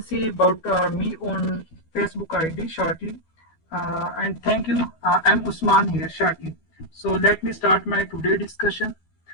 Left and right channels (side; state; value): right; late; 12 ms